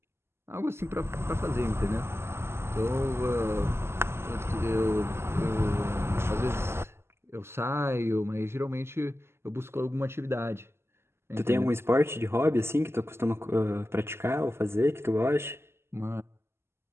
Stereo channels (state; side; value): late; left; 0.12 ms